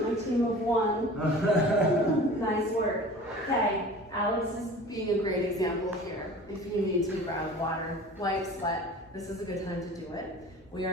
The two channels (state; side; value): normal; both; correlation 0.41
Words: My team of one. Nice work. Okay, Alex is being a great example here. If you need to grab water, wipe, sweat, this is a good time to do it. We